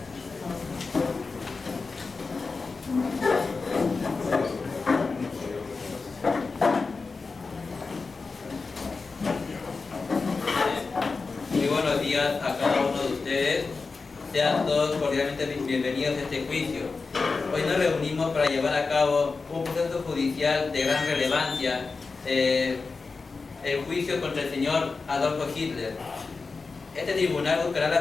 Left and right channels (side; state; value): right; quieter; 4.3 dB